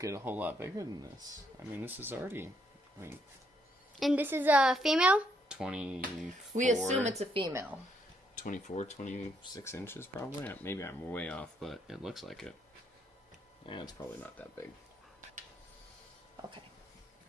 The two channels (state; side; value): normal; both; correlation 0.74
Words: a whole lot bigger than this. I mean, this is already, And this is a female? 24... We assume it's a female. 24, 26 inches probably. Maybe I'm way off, but it looks like it. Yeah, it's probably not that big. Okay.